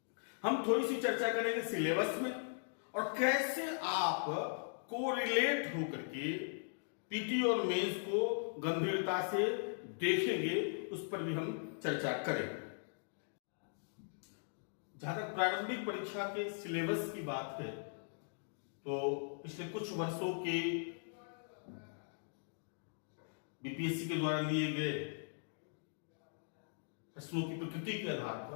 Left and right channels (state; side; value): silent; right; digital silence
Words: हम थोड़ी सी चर्चा करेंगे सिलेबस में और कैसे आप कोरिलेट होकर के पीटी और मेंस को गंभीरता से देखेंगे, उस पर भी हम चर्चा करेंगे। जहां तक प्रारंभिक परीक्षा के सिलेबस की बात है तो पिछले कुछ वर्षों के बीपीएससी के द्वारा लिए गए प्रश्नों की प्रकृति के आधार